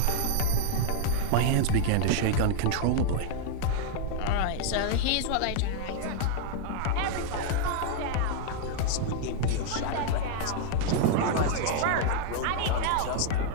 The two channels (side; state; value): both; different; correlation -0.01